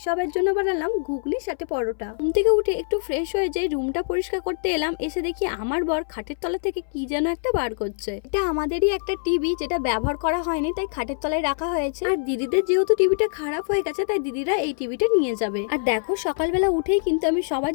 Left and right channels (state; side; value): silent; right; 62 dB below the other